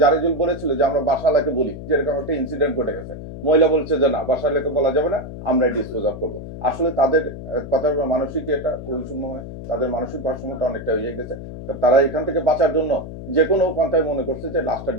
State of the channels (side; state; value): left; noise; hum, 11 dB below the sound